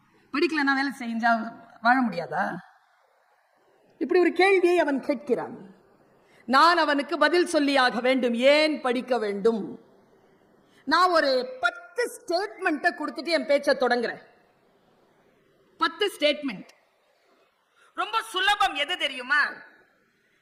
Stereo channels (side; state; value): both; identical; correlation 1.00